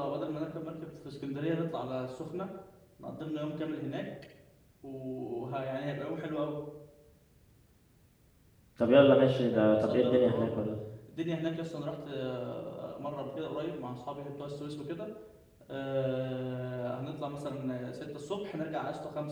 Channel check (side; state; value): both; identical; correlation 1.00